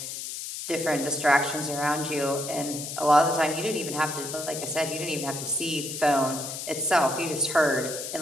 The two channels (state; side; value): noise; left; hiss, 7 dB below the sound